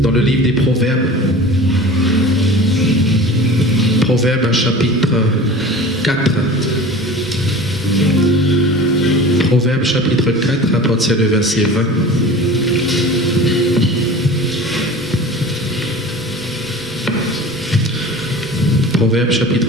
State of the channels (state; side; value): noise; right; rumble, 27 dB below the sound